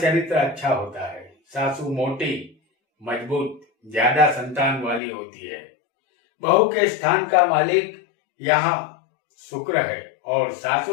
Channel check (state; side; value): drops out; right; at 5.0 s